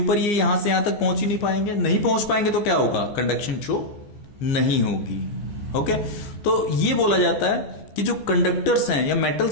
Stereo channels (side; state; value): right; late; 15 ms